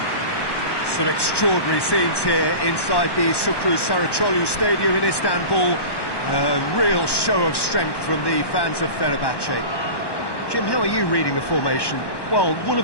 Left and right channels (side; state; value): right; late; 1.1 ms